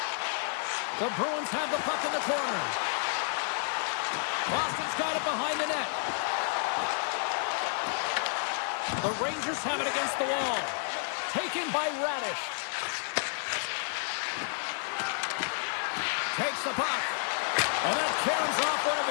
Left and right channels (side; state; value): right; silent; 57 dB below the other